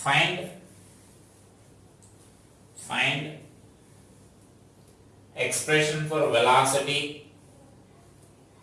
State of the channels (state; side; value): identical; both; correlation 1.00